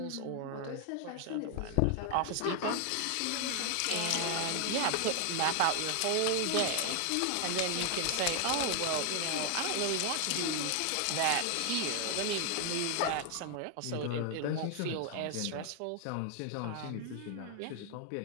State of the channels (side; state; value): both; different; correlation 0.00